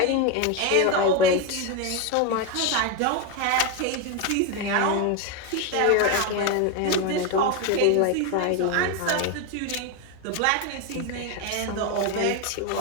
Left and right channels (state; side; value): different; both; correlation 0.02